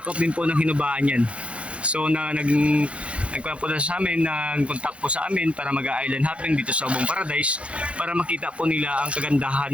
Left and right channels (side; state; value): left; late; 0.061 ms